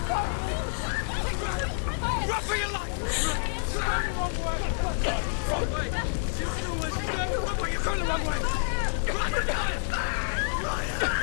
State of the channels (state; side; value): silent; right; 59 dB below the other